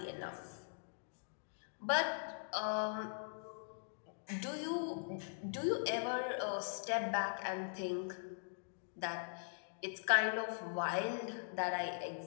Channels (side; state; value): right; silent; digital silence